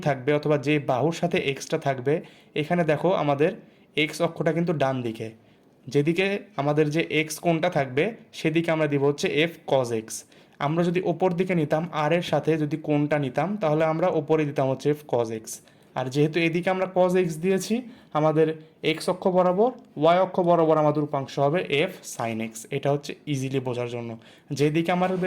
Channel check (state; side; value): identical; both; correlation 1.00